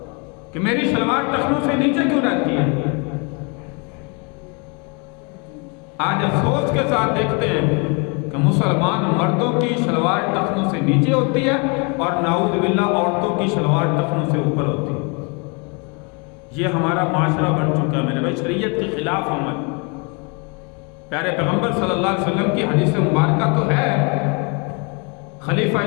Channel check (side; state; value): right; quieter; 32.9 dB